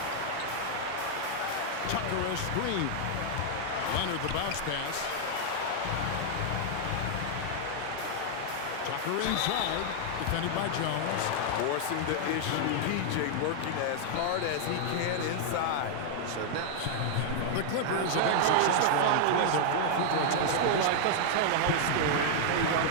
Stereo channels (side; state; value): both; different; correlation -0.01